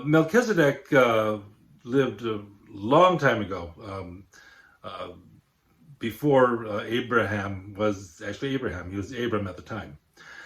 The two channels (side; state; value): both; identical; correlation 1.00